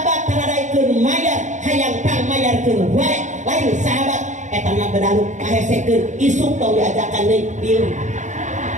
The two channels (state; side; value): late; left; 0.35 ms